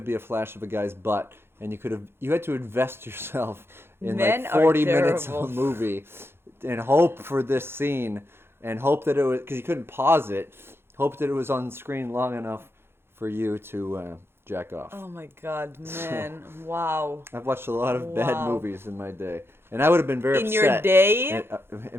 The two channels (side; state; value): left; late; 0.11 ms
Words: be a flash of a guy's butt, and you had to invest yourself in Men like are 40 minutes of terrible. a movie and hope for this scene and hope that it was, because you couldn't pause it, hope that it was on screen long enough for you to jack off. Oh my God, man! Wow. I've watched a lot of bad Wow. movies in my day, and I would have been very In upset. your day?